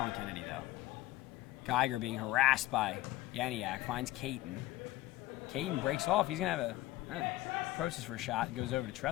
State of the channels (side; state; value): right; quieter; 16.3 dB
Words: though. Geiger being harassed by Yaniak. Finds Caton. Caton breaks off. He's going to have approaches for a shot. Goes over to